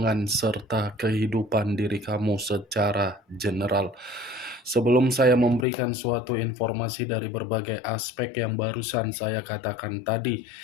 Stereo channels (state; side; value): drops out; right; at 5.7 s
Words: serta kehidupan diri kamu secara general. Sebelum saya memberikan suatu informasi dari berbagai aspek yang barusan saya katakan tadi,